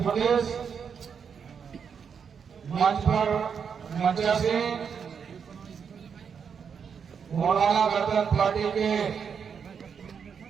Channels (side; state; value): left; quieter; 6.7 dB